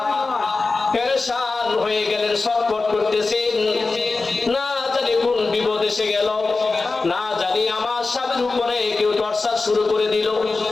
পেরেশান হয়ে গেলেন, ছটফট করতেছেন, না জানি কোন বিপদ এসে গেল, না জানি আমার স্বামীর উপরে কেউ টর্চার শুরু করে দিল,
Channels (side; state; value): right; quieter; 3.8 dB